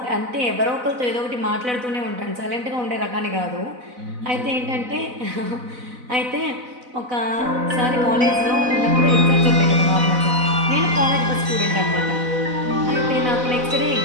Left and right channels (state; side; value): late; left; 4.0 ms